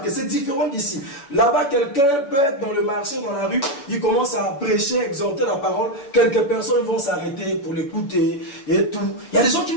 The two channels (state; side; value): late; right; 7.1 ms